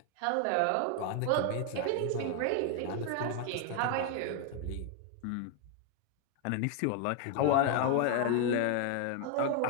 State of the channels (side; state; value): both; different; correlation 0.00